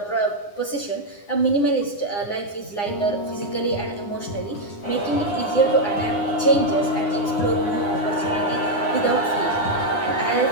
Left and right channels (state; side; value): late; right; 9.8 ms